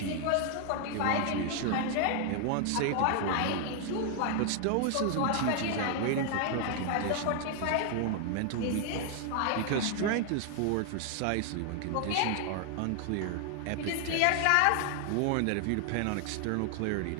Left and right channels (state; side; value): different; both; correlation 0.00